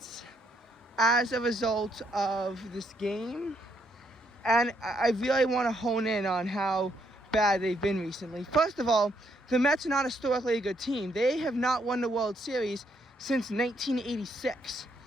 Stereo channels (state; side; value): normal; both; correlation 0.73